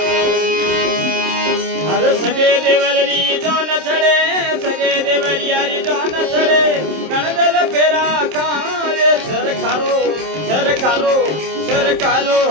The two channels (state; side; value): late; left; 27 ms